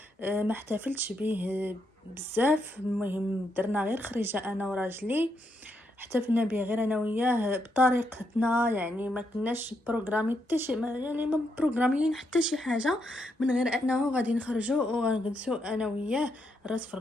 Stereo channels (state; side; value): normal; both; correlation 0.79